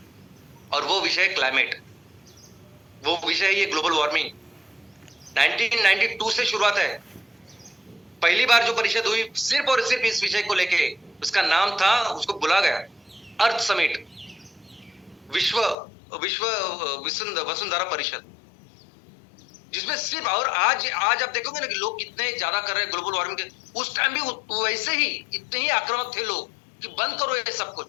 और वो विषय है क्लाइमेट। वो विषय है ये ग्लोबल वार्मिंग। 1992 से शुरुआत है। पहली बार जो परिषद हुई सिर्फ और सिर्फ इस विषय को लेके, उसका नाम था, उसको बुला गया अर्थ समिट, विश्व वसुंधरा परिषद, जिसमें सिर्फ, और आज आप देखोगे ना कि लोग कितने ज्यादा कर रहे हैं ग्लोबल वार्मिंग के। उस टाइम भी वैसे ही इतने ही आक्रामक थे लोग कि बंद करो ये सब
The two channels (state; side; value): drops out; right; at 15.8 s